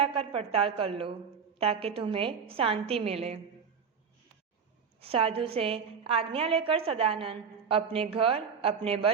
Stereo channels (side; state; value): left; quieter; 6.3 dB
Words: पड़ताल कर लो, ताकि तुम्हें शांति मिले। साधु से आज्ञा लेकर सदानंद अपने घर, अपने